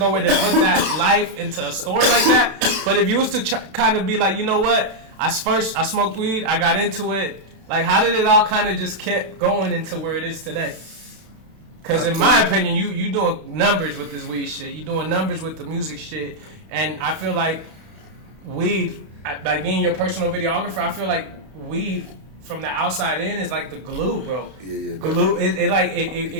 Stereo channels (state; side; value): late; left; 31 ms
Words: way to put that life into a story like that. But if you was to kind of be like, you know what? I smoked weed. I got into it. Like, how did it all kind of just kept going into where it is today? Because in my opinion, you doing numbers with this weed shit. You doing numbers with the music shit. And I feel like weed, like being your personal videographer, I feel like weed from the outside in is like the glue, bro. Yeah. Glue.